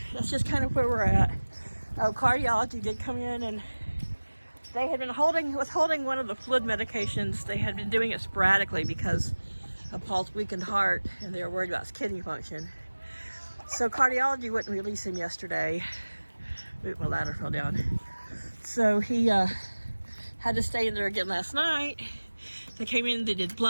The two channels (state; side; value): inverted; both; correlation -1.00